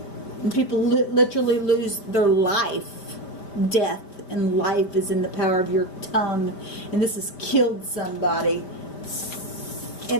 And people literally lose their life. Death and life is in the power of your tongue. And this has killed somebody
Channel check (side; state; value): right; late; 5.1 ms